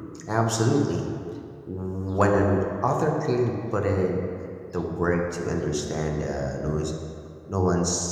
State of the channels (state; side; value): identical; both; correlation 1.00